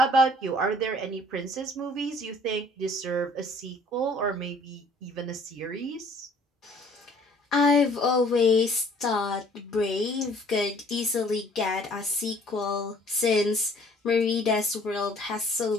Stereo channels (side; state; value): both; normal; correlation 0.56